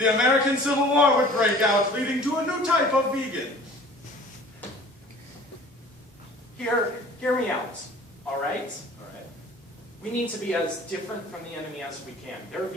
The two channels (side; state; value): both; normal; correlation 0.47